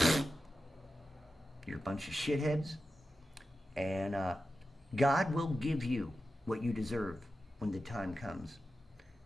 You're a bunch of shitheads, and God will give you what you deserve when the time comes.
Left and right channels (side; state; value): both; normal; correlation 0.91